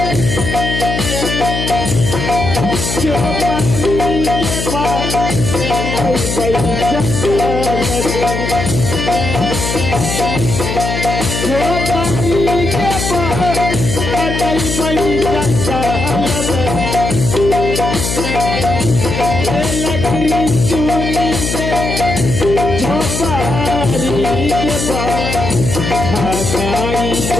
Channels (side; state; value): left; noise; hum, 3 dB below the sound